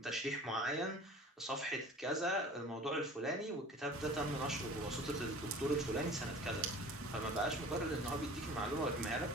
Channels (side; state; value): both; normal; correlation 0.43